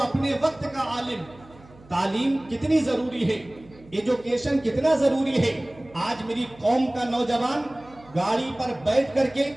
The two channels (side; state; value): right; noise; hum, 24 dB below the sound